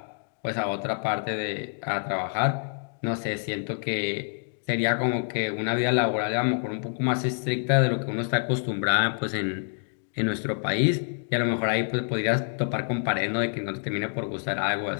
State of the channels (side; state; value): right; silent; digital silence